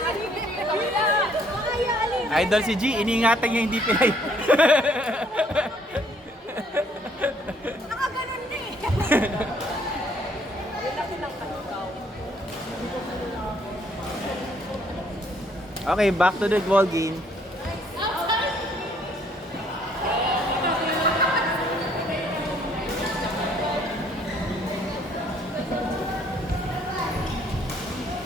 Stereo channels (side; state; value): both; normal; correlation 0.64